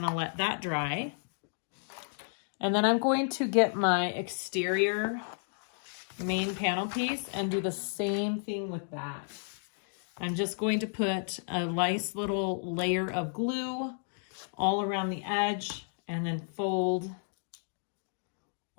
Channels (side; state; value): right; silent; digital silence